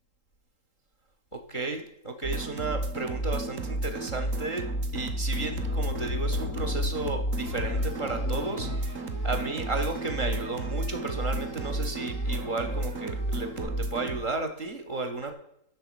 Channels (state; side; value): late; right; 3.8 ms